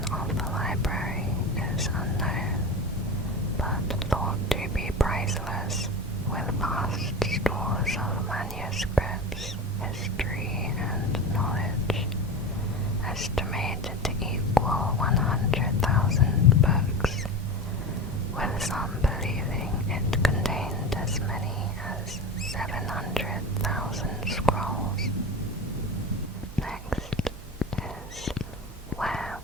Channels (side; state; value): both; normal; correlation 0.27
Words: of the library is unknown, but thought to be priceless, with vast stores of manuscripts, history, and knowledge, estimated to equal 100,000 books, with some believing it contained as many as 700,000 scrolls. Next is, where